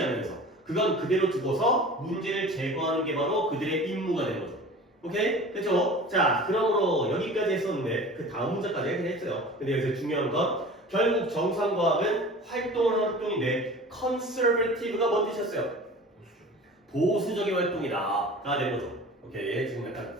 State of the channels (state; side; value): normal; both; correlation 0.40